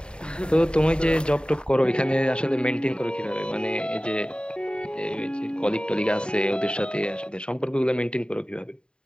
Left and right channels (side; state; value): right; late; 0.051 ms